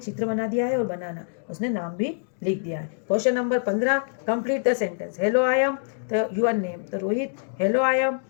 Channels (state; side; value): silent; right; digital silence